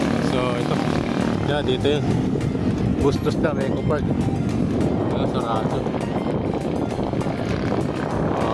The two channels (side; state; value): both; identical; correlation 1.00